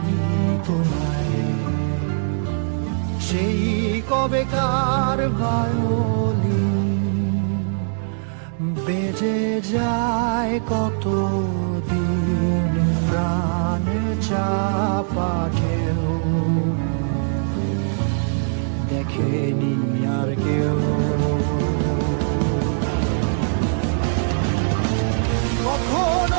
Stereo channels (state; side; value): silent; left; digital silence